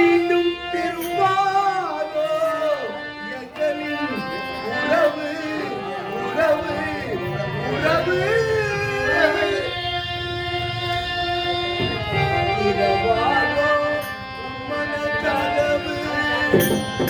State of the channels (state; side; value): identical; both; correlation 1.00